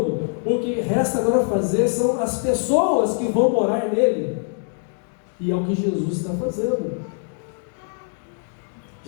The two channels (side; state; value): right; silent; 59 dB below the other